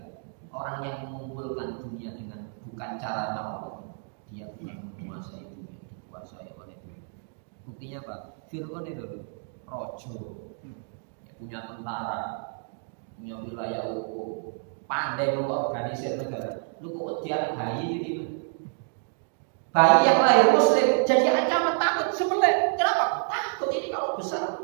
Orang yang mengumpulkan dunia dengan bukan cara Allah, dia bukan menguasai dunia, dikuasai oleh dunia. Buktinya apa? Fir'aun itu rojo, ya, punya tentara, punya wilayah hukum, pandai mengorganisir negara. Lu kok dia bayi gitu? Bayi yang lahir Muslim jadi ancaman takut sebelah. Kenapa? Takut ini kalau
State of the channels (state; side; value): silent; left; 56 dB below the other